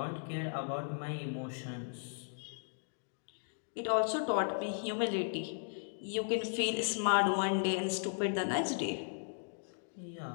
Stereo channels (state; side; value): silent; right; digital silence